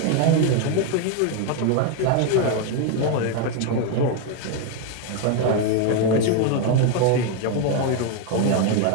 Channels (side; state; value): both; different; correlation 0.01